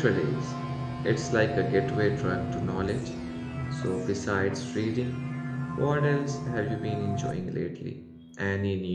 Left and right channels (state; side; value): identical; both; correlation 1.00